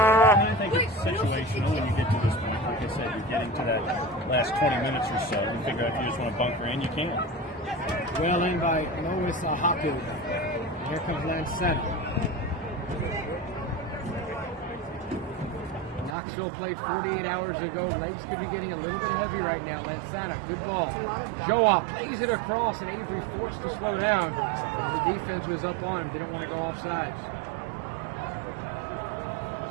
think it's situational when you get to this point. Like I said, you're getting to that last 20 minutes or so. You figure out if you just want to bunker in, you can. well in by Lois Haku. Here comes Lancetta. Knoxville played 48 hours ago. Legs could be getting a little bit heavy right now. Lansana, good ball. Joa plays it across, and Avery forced to slow down as the defense was up on him. Didn't want to go off sides.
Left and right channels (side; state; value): left; drops out; at 16.2 s